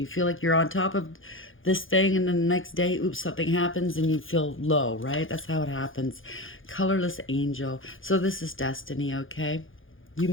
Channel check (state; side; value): late; right; 0.58 ms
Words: feel like you're on top of this thing, and then the next day, oops, something happens and you feel low, right? That's how it happens. Colorless angel. So this is destiny, okay? You